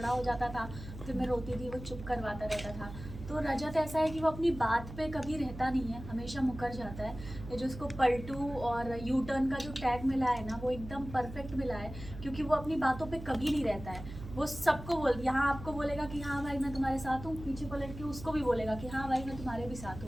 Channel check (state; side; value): noise; right; hum, 12 dB below the sound